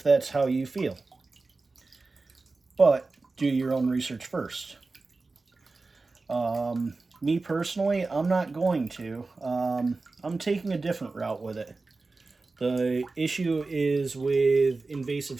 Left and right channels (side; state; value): left; quieter; 3.7 dB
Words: that's how you feel. But do your own research first. Me personally, I'm not going to. I'm taking a different route with it. The issue is with invasive